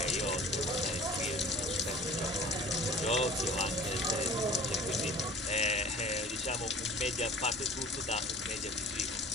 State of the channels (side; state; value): both; normal; correlation 0.44